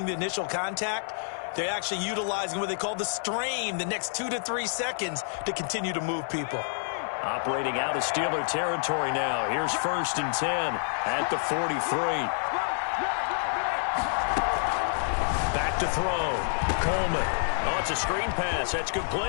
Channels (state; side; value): silent; right; 59 dB below the other